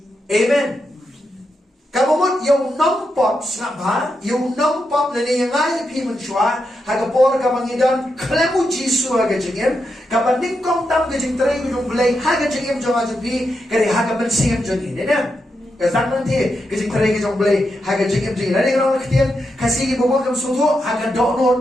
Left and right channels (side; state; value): both; normal; correlation 0.85